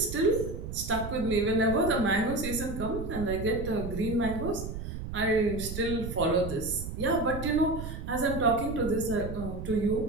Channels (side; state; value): right; noise; rumble, 7 dB below the sound